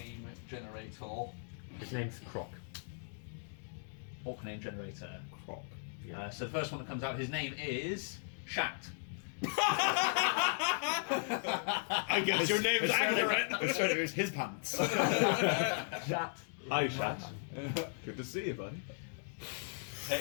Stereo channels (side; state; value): right; silent; digital silence